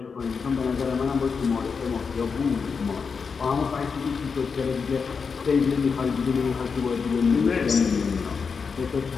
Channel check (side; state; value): right; quieter; 5.5 dB